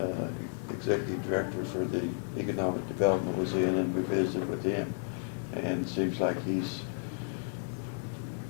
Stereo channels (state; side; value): silent; right; digital silence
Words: Executive Director for the Economic Development, was in, and we visited with him. And it seems like he's